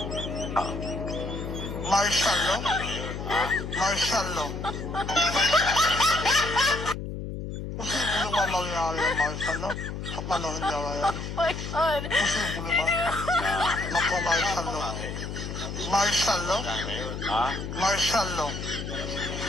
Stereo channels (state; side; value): noise; left; hum, 6 dB below the sound